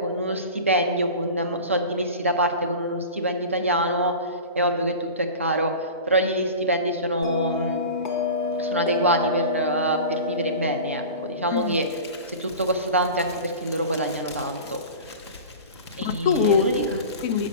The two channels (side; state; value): both; inverted; correlation -0.34